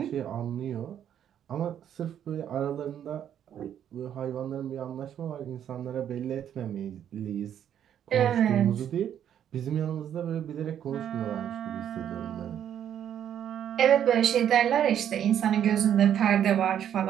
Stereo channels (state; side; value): quieter; left; 9.7 dB